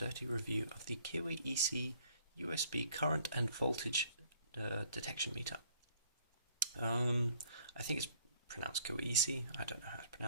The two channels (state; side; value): inverted; both; correlation -0.60